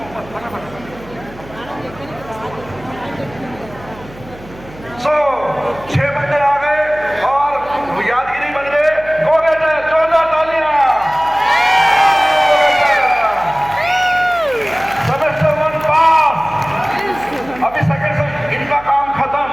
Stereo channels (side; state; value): right; noise; hum, 19 dB below the sound